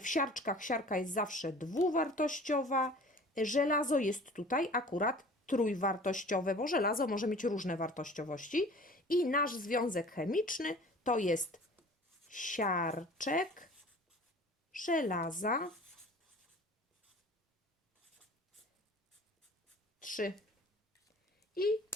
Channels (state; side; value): normal; both; correlation 0.45